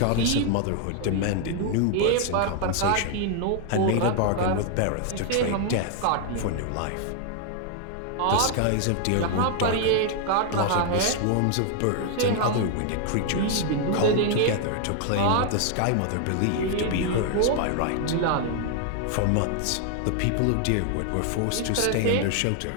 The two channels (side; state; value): both; different; correlation 0.00